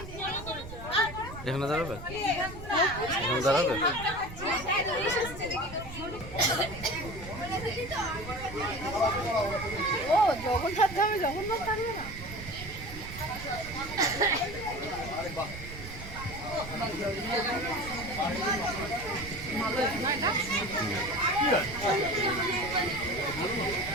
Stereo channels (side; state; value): right; noise; rumble, 12 dB below the sound